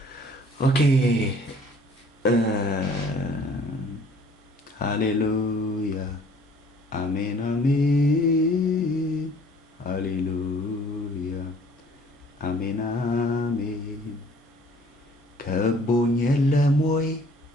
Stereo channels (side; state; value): both; normal; correlation 0.55